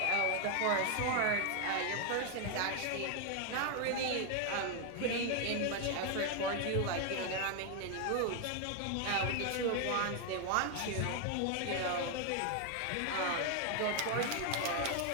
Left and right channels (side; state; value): both; different; correlation 0.01